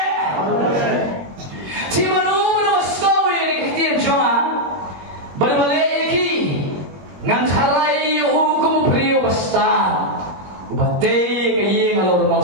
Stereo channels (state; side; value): late; left; 21 ms